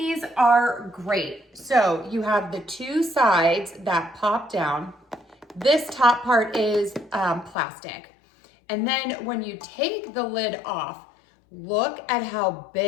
are great. So you have the two sides that pop down. This top part is plastic. And then when you take the lid off, look at how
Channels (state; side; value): drops out; right; at 7.6 s